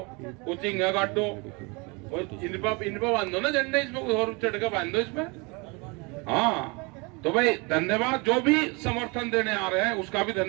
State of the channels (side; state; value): left; quieter; 28.6 dB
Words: कुछ इंगा काटो, इन पर बांधो ना झंडे, इसमें और चढ़ के बांधो इसमें। हाँ तो भाई धन्यवाद, जो भी समर्थन देने आ रहे हैं उसका भी